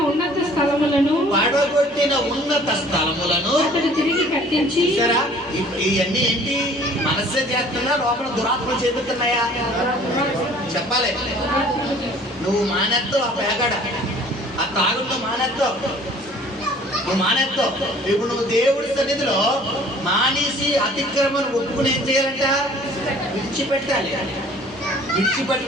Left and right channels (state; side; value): normal; both; correlation 0.52